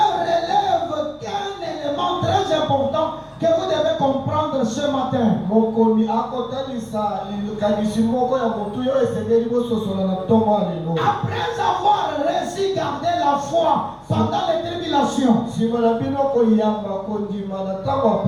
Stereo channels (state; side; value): identical; both; correlation 1.00